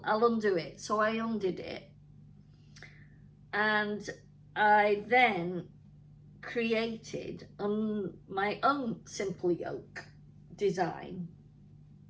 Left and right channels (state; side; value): identical; both; correlation 1.00